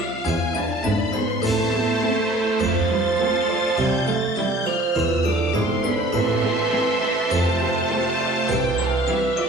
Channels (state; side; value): normal; both; correlation 0.51